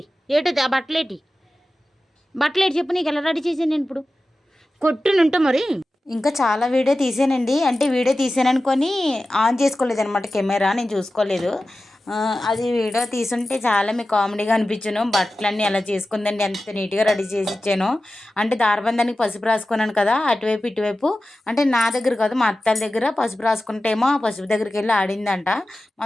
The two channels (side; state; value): both; normal; correlation 0.94